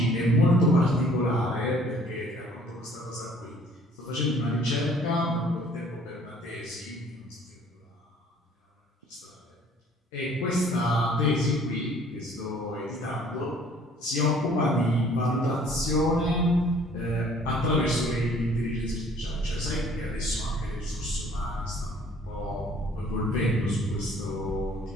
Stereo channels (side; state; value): both; normal; correlation 0.56